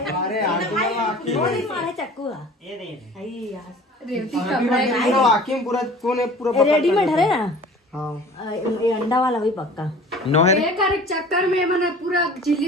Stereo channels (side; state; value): both; normal; correlation 0.45